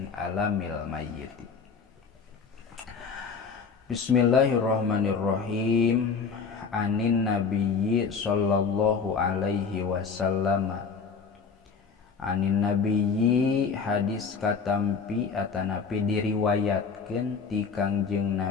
alamil mayyiti. Bismillahirrahmanirrahim. Anin nabiyyi sallallahu alaihi wasallam. Anin nabiyyi hadis katampi atanapi diriwayatkeun ti Kangjeng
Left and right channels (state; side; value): quieter; right; 5.4 dB